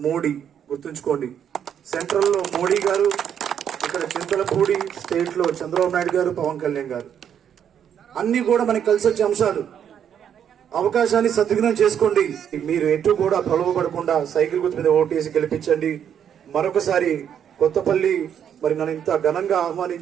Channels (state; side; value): quieter; left; 8.8 dB